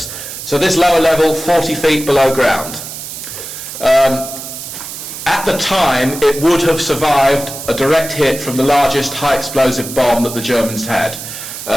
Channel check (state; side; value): noise; right; hiss, 10 dB below the sound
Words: So this lower level, 40 feet below ground. At the time, it would have survived a direct hit from the largest high explosive bomb that the Germans had.